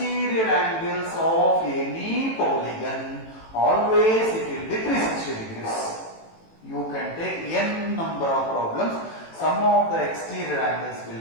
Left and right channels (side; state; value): right; late; 18 ms